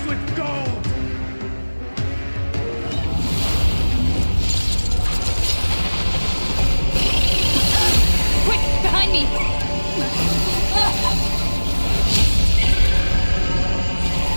with gold! Quick, behind me!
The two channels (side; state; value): both; inverted; correlation -1.00